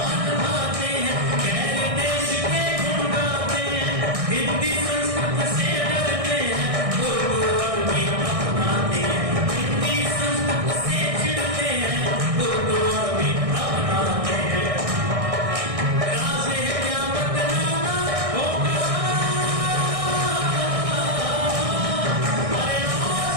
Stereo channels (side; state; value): left; late; 1.6 ms